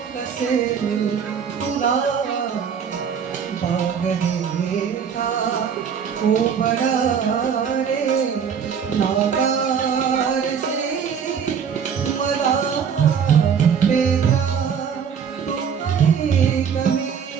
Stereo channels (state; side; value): quieter; left; 7.2 dB